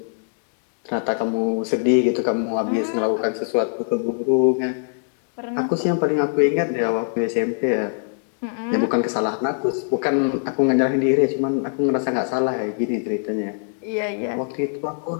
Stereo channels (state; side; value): silent; right; 64 dB below the other